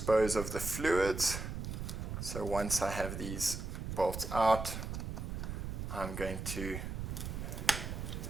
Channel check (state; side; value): noise; right; rumble, 5 dB below the sound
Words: of the fluids. So once I have these bolts out, I'm going to